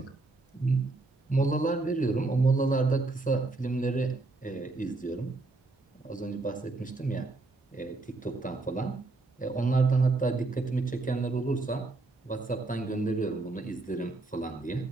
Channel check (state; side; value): quieter; left; 3.3 dB